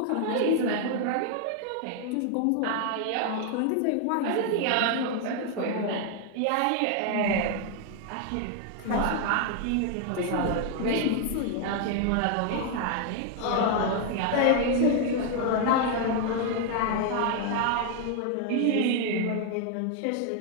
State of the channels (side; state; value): both; different; correlation 0.00